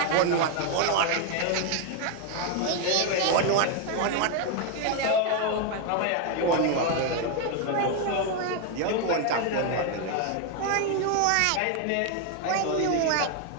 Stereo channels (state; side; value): different; both; correlation 0.01